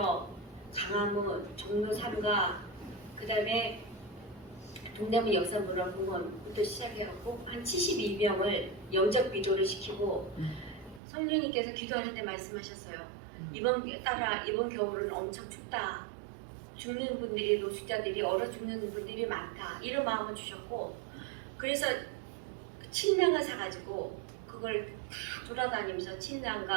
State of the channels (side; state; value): left; drops out; at 11.0 s